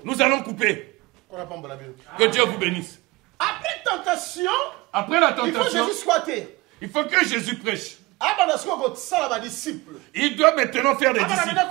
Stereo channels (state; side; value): quieter; left; 22.3 dB